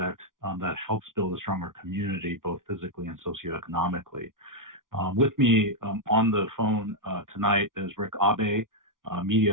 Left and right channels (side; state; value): left; late; 0.89 ms